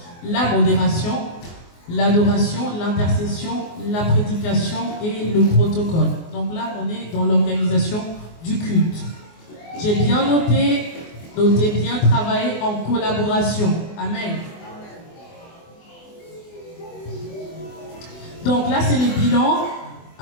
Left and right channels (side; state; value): right; late; 24 ms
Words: La modération, l'adoration, l'intercession, la prédication et le protocole. Donc là, on est dans l'organisation du culte. J'ai bien noté bien travailler en collaboration. Amen. Donc là, c'est les bilans.